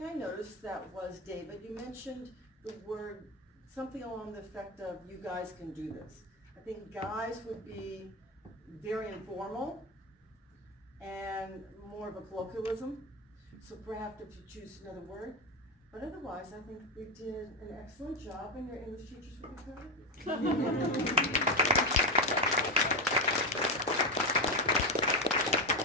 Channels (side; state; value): both; normal; correlation 0.12